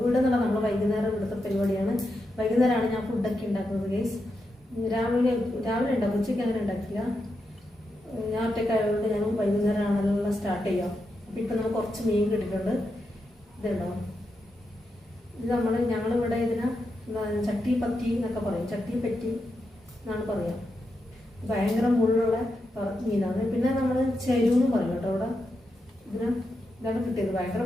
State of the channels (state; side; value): normal; both; correlation 0.86